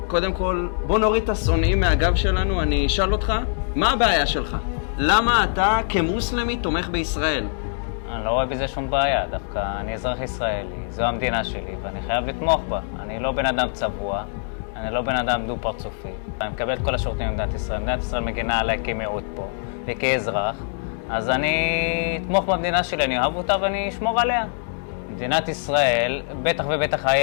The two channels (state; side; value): silent; right; digital silence